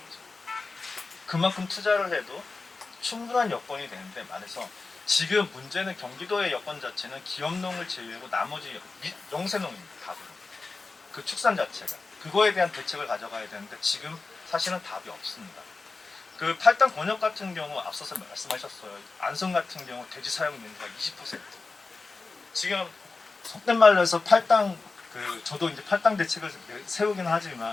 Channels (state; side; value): quieter; right; 3.9 dB